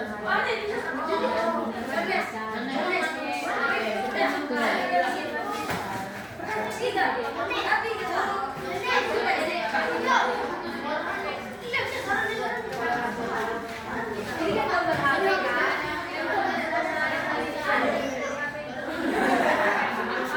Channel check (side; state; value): both; identical; correlation 1.00